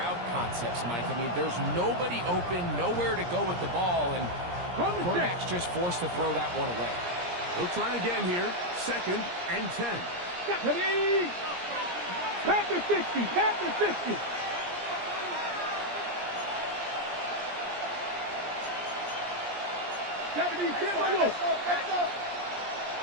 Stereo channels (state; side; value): late; left; 17 ms